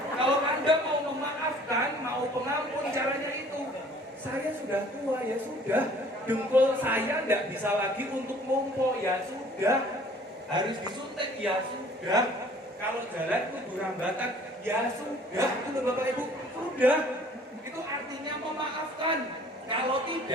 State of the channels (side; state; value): both; normal; correlation 0.54